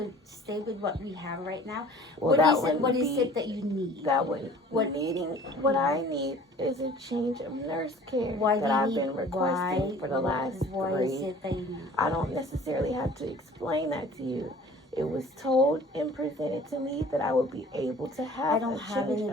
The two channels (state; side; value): normal; both; correlation 0.48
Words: stay with what we have right now. Well, What is it that you need? What I need is a change of nurse care I've been requesting for the last 3. What is it that you need? I don't necessarily have to explain that to you. It was told and presented to me that I would be able to have a change